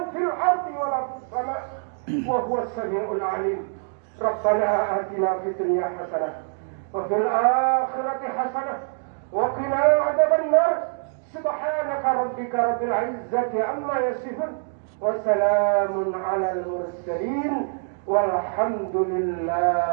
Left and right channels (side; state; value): left; silent; 61 dB below the other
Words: في الأرض ولا في السماء وهو السميع العليم ربنا آتنا في الدنيا حسنة وفي الآخرة حسنة وقنا عذاب النار سبحانك ربك رب العزة عما يصفون وسلام على المرسلين والحمد